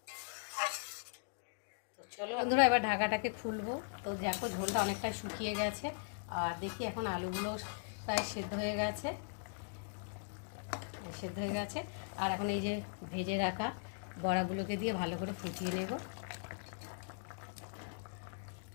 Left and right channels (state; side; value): silent; right; digital silence